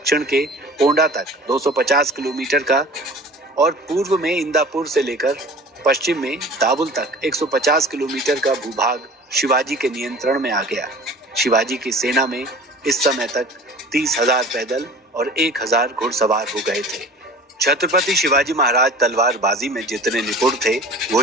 के पोंडा तक 250 किलोमीटर का और पूर्व में इंदापुर से लेकर पश्चिम में दावुल तक 150 किलोमीटर का भूभाग शिवाजी के नियंत्रण में आ गया। शिवाजी की सेना में इस समय तक 30,000 पैदल और 1,000 घुड़सवार हो गए थे। छत्रपति शिवाजी महाराज तलवारबाजी में जितने निपुण थे,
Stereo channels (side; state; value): both; normal; correlation 0.42